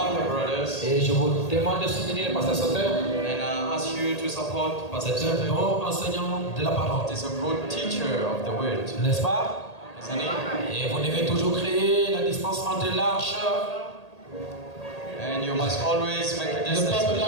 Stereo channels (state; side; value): late; right; 1.8 ms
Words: the brothers. Et je vous demande de soutenir le pasteur Sauter. And I ask you to support Pastor C'est un Soter. bon enseignant de la parole. He's a good teacher of the word, N'est-ce pas? isn't he? Et vous devez toujours créer la distance entre l'arche. And you must always make a Le distance peuple